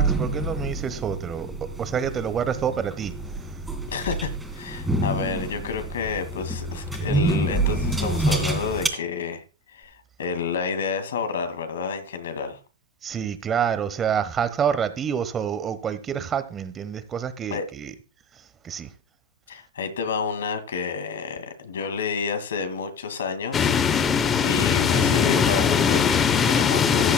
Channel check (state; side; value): normal; both; correlation 0.34